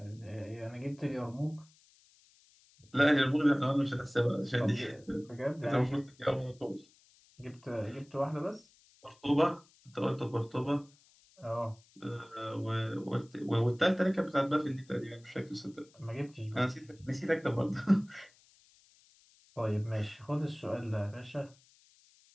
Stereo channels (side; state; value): left; noise; hiss, 29 dB below the sound